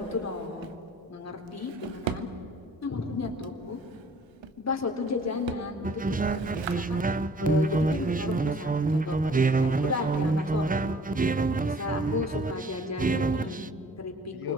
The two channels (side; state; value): both; normal; correlation 0.53